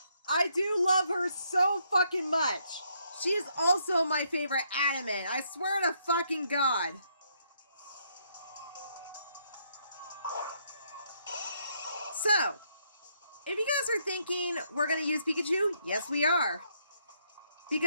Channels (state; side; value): inverted; both; correlation -0.73